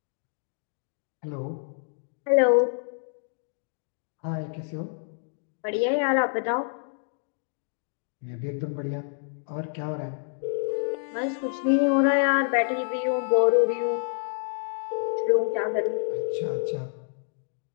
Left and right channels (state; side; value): silent; right; digital silence